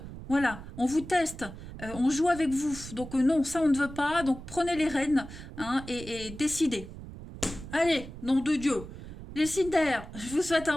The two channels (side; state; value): right; noise; rumble, 13 dB below the sound